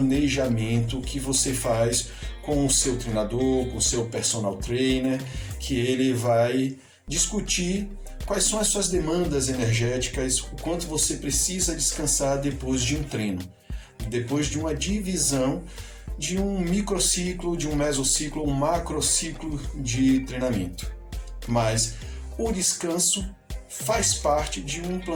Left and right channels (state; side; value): identical; both; correlation 1.00